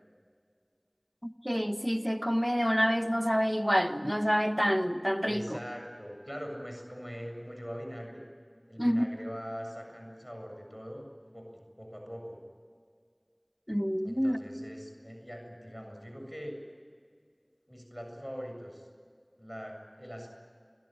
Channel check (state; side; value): identical; both; correlation 1.00